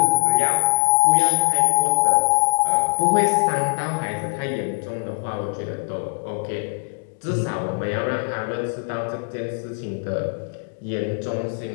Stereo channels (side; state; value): right; silent; digital silence